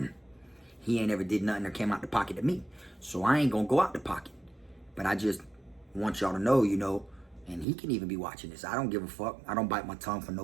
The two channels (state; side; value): drops out; left; at 7.7 s